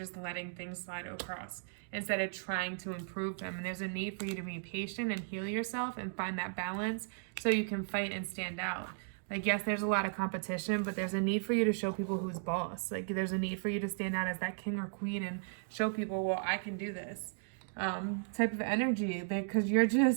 letting things slide across instead of trying to improve them. And there's a need for you to be patient and heal yourself and find that balance so you can fight and stand out. Like, yes, there's a lot of competition, but there's a need for you to show people who's boss. Like, there's a need for you to stand out as that king or queen and show people, well, I can do this. Type of energy, because you're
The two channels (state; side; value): silent; left; digital silence